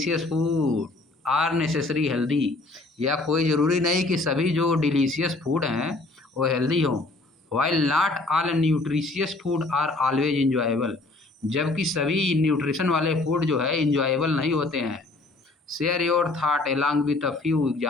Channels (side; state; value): right; quieter; 3.1 dB